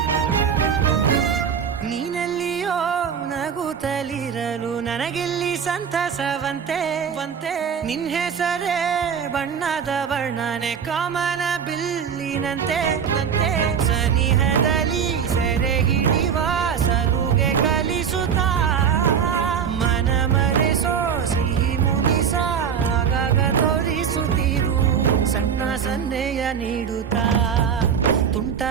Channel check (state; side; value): quieter; left; 7.4 dB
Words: ನೀನೆಲ್ಲಿಯೋ ನಗುತ್ತಲಿರಲು ನನಗೆಲ್ಲಿ ಸಂತಸವಂತೆ ನಿನ್ ಹೆಸರೇ ಬಣ್ಣದ ವರ್ಣನೆ ಕಾಮನ ಬಿಲ್ಲಿನಂತೆ ಸನಿಹದಲ್ಲಿ ಸೆರೆ ಹಿಡಿವ ಸಲುಗೆ ಕಲಿಸುತ್ತಾ ಮನ ಮರೆಸೋ ಸಿಹಿ ಮುನಿಸ ಆಗಾಗ ತೋರಿಸುತ್ತೀರು ಸಣ್ಣ ಸನ್ನೆಯ ನೀಡುತ್ತಾ ತುಂಟ